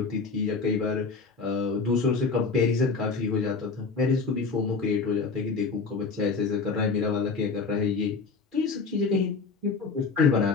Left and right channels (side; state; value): right; quieter; 4.6 dB